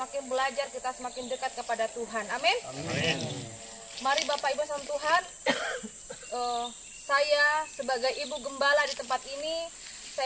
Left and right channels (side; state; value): both; identical; correlation 1.00